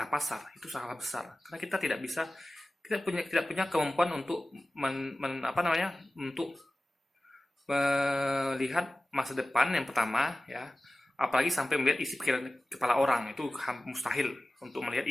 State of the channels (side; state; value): both; normal; correlation 0.96